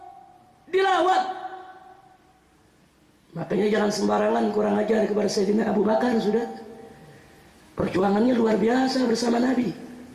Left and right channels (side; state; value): both; identical; correlation 1.00